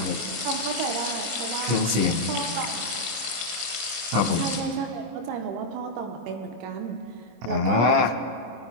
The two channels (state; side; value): late; left; 25 ms